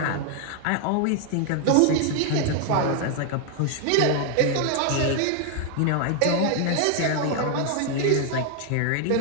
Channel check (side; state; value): both; different; correlation 0.00